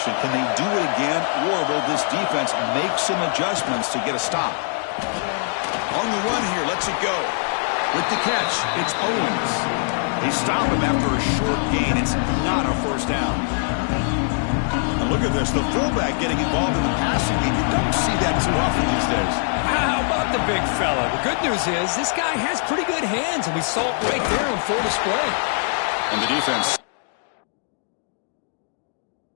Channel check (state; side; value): silent; right; 64 dB below the other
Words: Can they do it again, or will this defense make some adjustments to get a stop? On the run here, lets it go. With the catch, it's Owens. They stop him after a short gain. It's not a first down. And look at this, the fullback getting involved in the passing game. You don't see that too often these days. How about the big fella? The good news is this guy has pretty good hands, and we saw it right there on full display. And the defense.